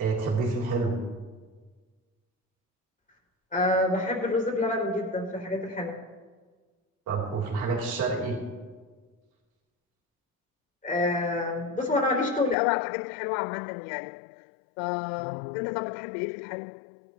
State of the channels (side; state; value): right; drops out; at 12.6 s